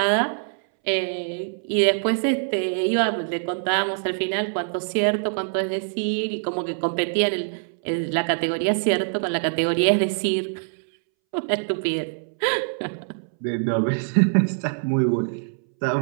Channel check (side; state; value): left; silent; 63 dB below the other